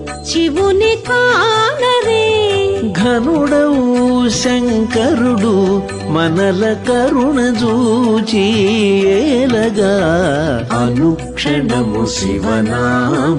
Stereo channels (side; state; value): both; identical; correlation 1.00